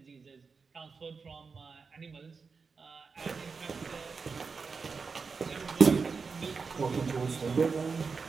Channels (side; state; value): left; quieter; 5.0 dB